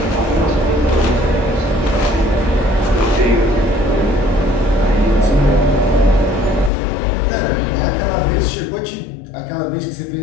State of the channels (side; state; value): right; drops out; at 6.7 s